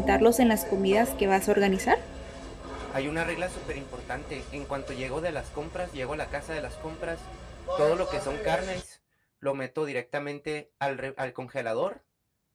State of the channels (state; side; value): identical; both; correlation 1.00